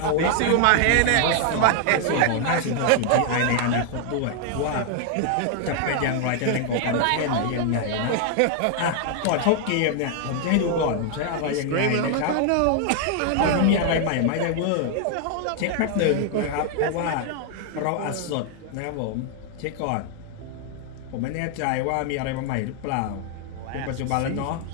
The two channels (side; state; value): both; different; correlation 0.00